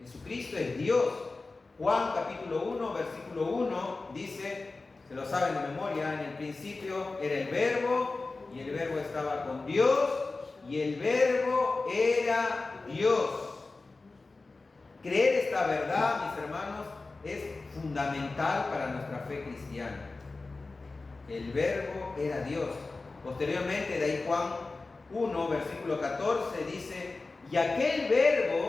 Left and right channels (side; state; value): right; quieter; 3.6 dB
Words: Jesucristo es Dios. Juan capítulo 1, versículo 1 dice, se lo saben de memoria, en el principio era el Verbo, y el Verbo estaba con Dios, y el Verbo era Dios. Creer esta verdad, mis hermanos, es fundamental para nuestra fe cristiana. El Verbo era Dios. Posteriormente, de ahí Juan 1, versículo 14, dice, y aquel